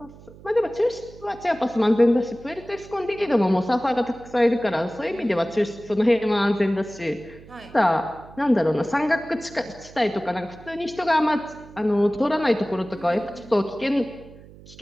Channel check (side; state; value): right; noise; hum, 20 dB below the sound